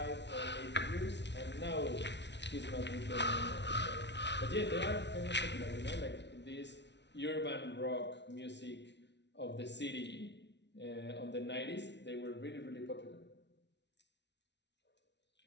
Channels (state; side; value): late; right; 0.51 ms